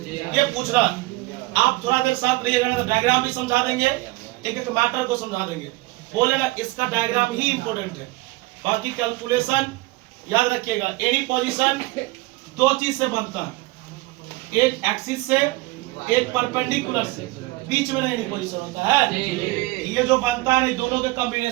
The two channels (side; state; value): left; quieter; 21.2 dB